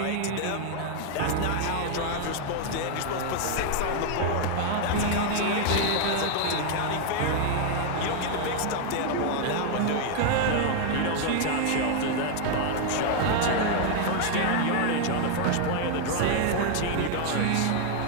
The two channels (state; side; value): different; both; correlation 0.00